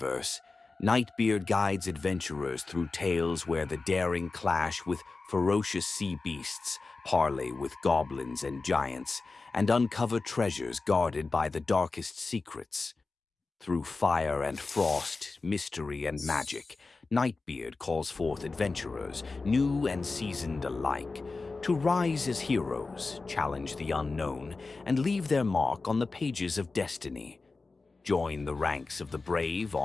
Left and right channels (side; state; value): right; quieter; 3.8 dB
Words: Nightbeard guides adventurers through tales where the daring clash with ferocious sea beasts, parley with goblins and giants, and uncover treasures guarded by the darkest secrets. Through fire and frost, mystery and magic, Nightbeard calls forth adventurers, new and seasoned alike, to rise as heroes, challenge the unknown, and leave their mark on the pages of destiny. Join the ranks of the brave